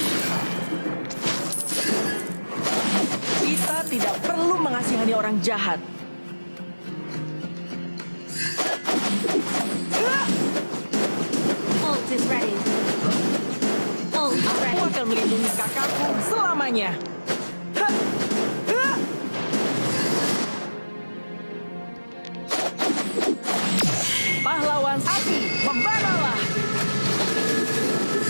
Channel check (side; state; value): both; inverted; correlation -1.00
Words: Kita tidak perlu mengasihani orang jahat. Ult is ready. Ult is Aku ready. akan melindungi kakakku selamanya. Ha! Ha! Pahlawan api, membaralah!